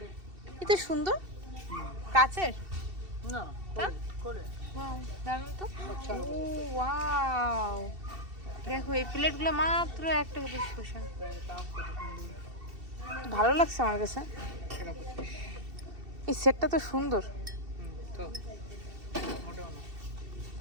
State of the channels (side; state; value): left; late; 2.7 ms